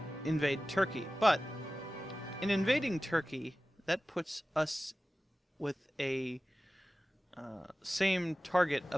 invade Turkey. But in invading Turkey, that puts us with a same target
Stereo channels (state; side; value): normal; both; correlation 0.96